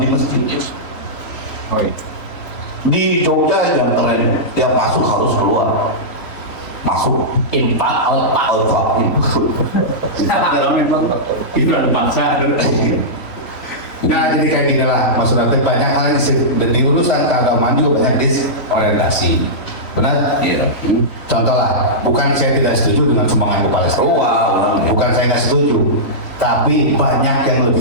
masjid. Oh iya. Di Jogja yang keren, yang masuk harus keluar. Masuk. Infak, outpak. Alfa. Hiburan bangsa. Nah jadi kayak gini lah maksudnya banyak hal di urusan keagamaan juga banyak disorientasi. Benar? Iya. Contoh lah, bukan saya tidak setuju dengan sumbangan ke Palestina. Bukan saya tidak setuju, tapi banyak yang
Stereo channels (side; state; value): right; late; 3.5 ms